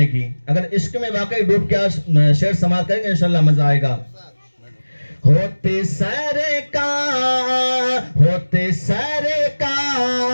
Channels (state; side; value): inverted; both; correlation -1.00